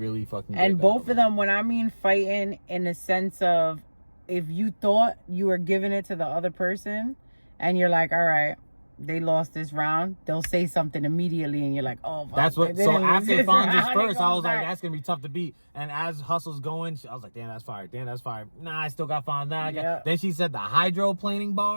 fucking great And both battle, of them, when I mean fighting in the sense of, if you thought you were giving it to the other person, and you're like, all right, they lost this round, they'll say something immediately, and you're like, oh, fuck, that's what. So after Fonz's first, I was like, that's gonna be tough to beat. And as Hustle's going, I was like, damn, that's fire. Damn, that's fire. Nah, I still got Fonz. Nah, then she said the hydroplaning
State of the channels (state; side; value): inverted; both; correlation -1.00